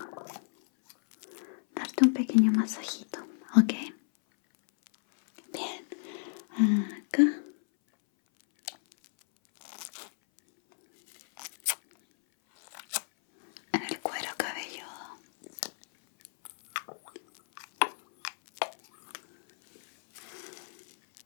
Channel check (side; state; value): right; silent; 57 dB below the other